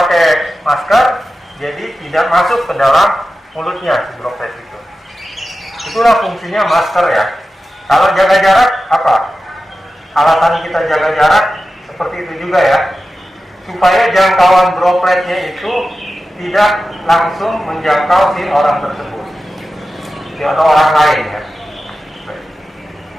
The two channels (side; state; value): both; normal; correlation 0.93